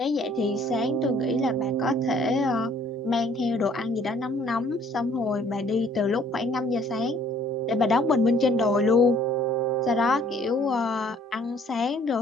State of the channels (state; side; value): normal; both; correlation 0.59